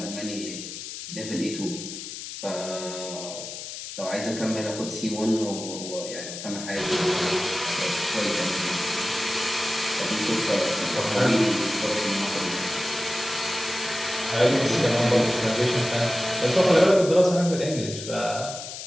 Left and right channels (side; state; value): left; noise; hiss, 9 dB below the sound